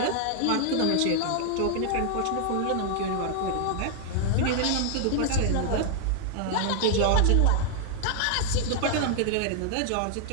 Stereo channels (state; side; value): different; both; correlation 0.00